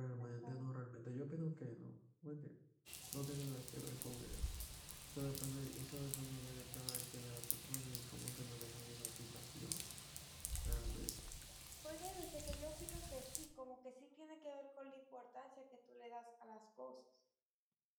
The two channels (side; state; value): both; identical; correlation 1.00